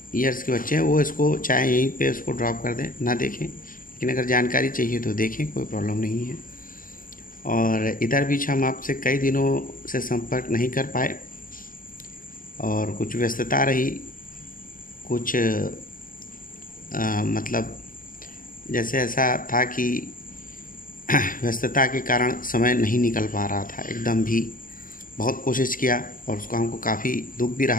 ईयर्स के बच्चे हैं वो इसको चाहे यहीं पे उसको ड्रॉप कर दें, ना देखें, लेकिन अगर जानकारी चाहिए तो देखें, कोई प्रॉब्लम नहीं है। और इधर बीच हम आपसे कई दिनों से संपर्क नहीं कर पाए और कुछ व्यस्तता रही, कुछ मतलब जैसे ऐसा था कि व्यस्तता के कारण समय नहीं निकल पा रहा था एकदम भी। बहुत कोशिश किया और उसको हमको काफ़ी दुख भी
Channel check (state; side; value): late; right; 0.40 ms